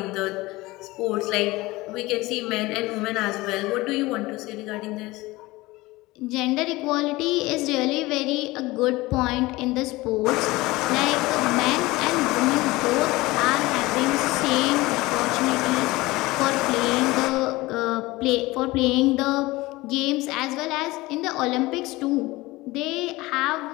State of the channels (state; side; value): quieter; right; 20.4 dB